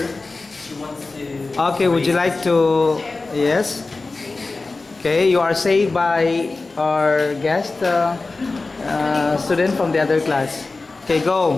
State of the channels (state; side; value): quieter; right; 3.6 dB